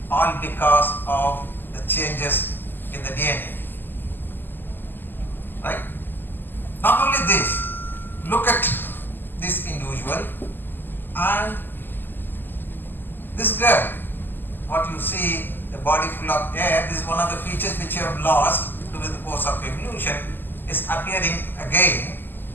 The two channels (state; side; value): late; right; 0.093 ms